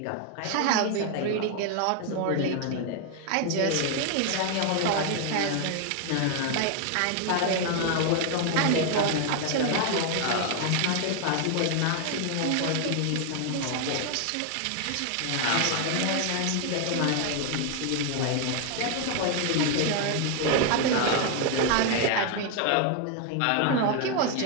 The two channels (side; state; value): both; different; correlation 0.00